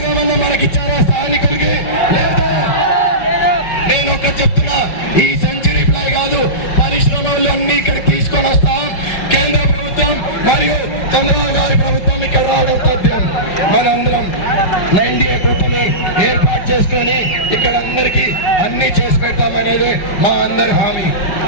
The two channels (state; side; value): late; right; 5.5 ms